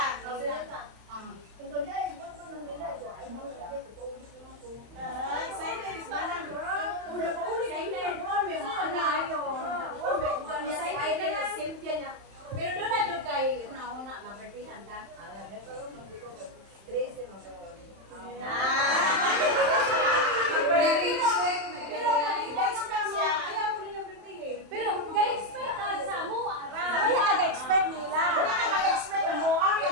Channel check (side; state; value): left; late; 31 ms